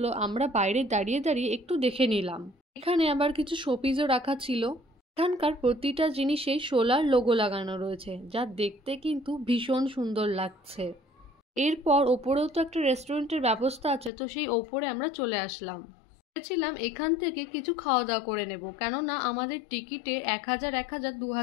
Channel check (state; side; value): drops out; right; at 14.1 s